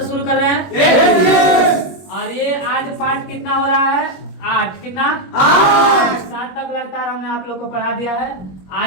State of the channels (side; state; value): right; late; 21 ms